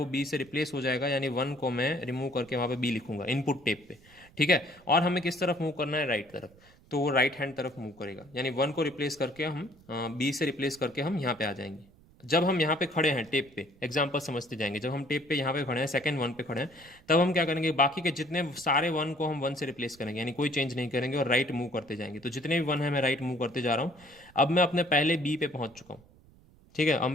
B से रिप्लेस हो जाएगा, यानी 1 को मैं रिमूव करके वहाँ पे B लिखूंगा इनपुट टेप पे। ठीक है, और हमें किस तरफ मूव करना है, राइट तरफ, तो वो राइट हैंड तरफ मूव करेगा, यानी 1 को रिप्लेस करके हम B से रिप्लेस करके हम यहाँ पे आ जाएंगे। जब हम यहाँ पे खड़े हैं टेप पे, एग्जाम्पल समझते जाएंगे, जब हम टेप पे यहाँ पे खड़े हैं, सेकंड 1 पे खड़े हैं, तब हम क्या करेंगे, बाकी के जितने सारे 1 को हम 1 से रिप्लेस करेंगे, यानी कोई चेंज नहीं करेंगे और राइट मूव करते जाएंगे। तो जितने भी 1 है मैं राइट मूव करते जा रहा हूँ। अब मैं अपने पहले B पे पहुँच चुका हूँ। ठीक है,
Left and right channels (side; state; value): right; noise; rumble, 26 dB below the sound